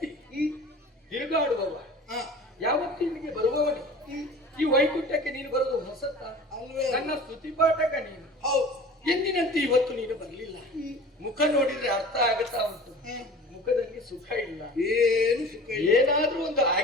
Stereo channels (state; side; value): normal; both; correlation 0.41